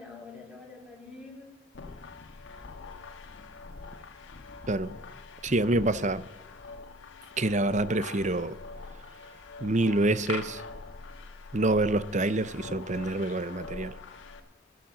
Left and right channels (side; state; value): both; normal; correlation 0.49